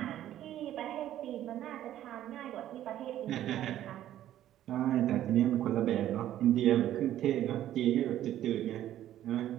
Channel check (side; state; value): left; quieter; 12.4 dB